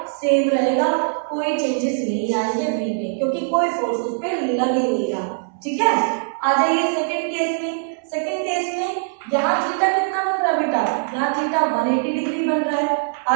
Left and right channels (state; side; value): silent; left; 65 dB below the other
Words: सेम रहेगा, कोई चेंजेस नहीं आएंगे v में, क्योंकि कोई फोर्स उस पर लग ही नहीं रहा। ठीक है, आ जाइए सेकंड केस में। सेकंड केस में यहाँ थीटा कितना बन रहा है बेटा, यहाँ थीटा 180 डिग्री बन रहा है।